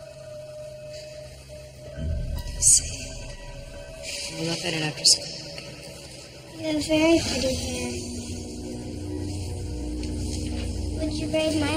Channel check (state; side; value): identical; both; correlation 1.00